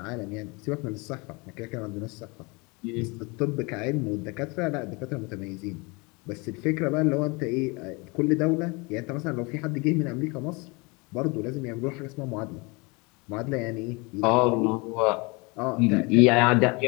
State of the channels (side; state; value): right; quieter; 28.0 dB